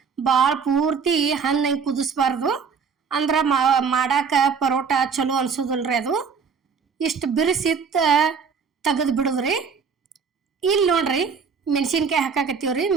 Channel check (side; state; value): left; quieter; 6.0 dB